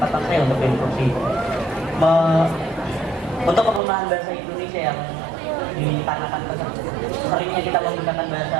saya untuk berinstruksi. Untuk penggunaan bahasa Indonesia yang dikarenakan seringnya kita menggunakan bahasa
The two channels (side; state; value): left; drops out; at 3.8 s